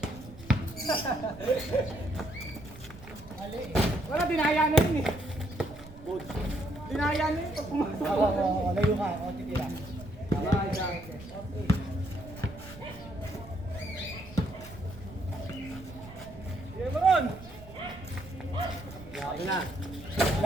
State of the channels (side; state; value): right; noise; rumble, 18 dB below the sound